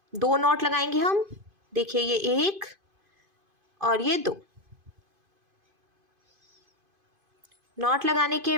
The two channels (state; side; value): late; left; 2.5 ms